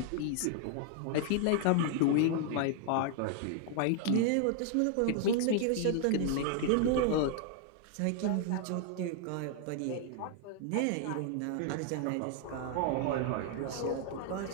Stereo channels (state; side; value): different; both; correlation 0.00